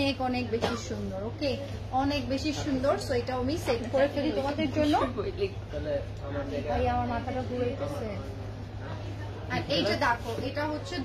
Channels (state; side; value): identical; both; correlation 1.00